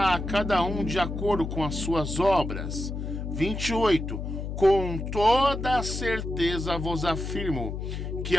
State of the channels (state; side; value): noise; left; hum, 5 dB below the sound